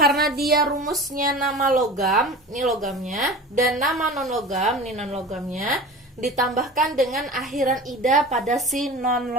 dia rumusnya nama logam, ini logamnya, dan nama non-logam, ini non-logamnya, ditambahkan dengan akhiran ida pada si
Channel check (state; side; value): normal; both; correlation 0.35